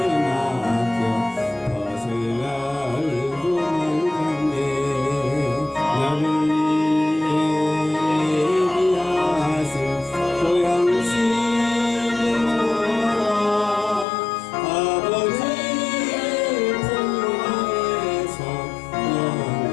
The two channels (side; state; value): right; drops out; at 14.1 s